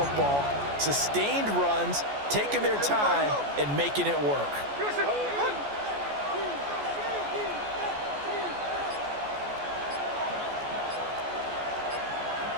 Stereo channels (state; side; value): late; left; 14 ms